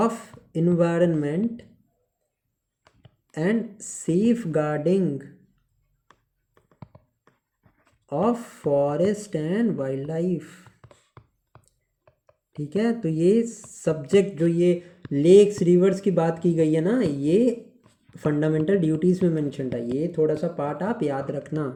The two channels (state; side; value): identical; both; correlation 1.00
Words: environment and safeguarding of forest and wildlife. ठीक है. तो ये सब्जेक्ट जो ये लेक्स रिवर्स की बात की गई है ना, ये फंडामेंटल ड्यूटीज़ में मेंशन है. ये थोड़ा सा पार्ट आप याद